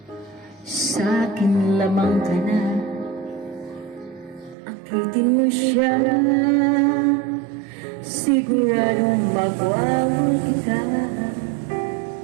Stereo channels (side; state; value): left; drops out; at 4.5 s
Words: sa'kin lamang ka na. Akitin mo siya, siguradong magwawal kita.